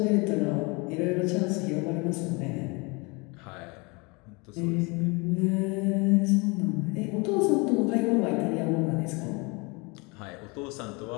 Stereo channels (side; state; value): right; quieter; 28.3 dB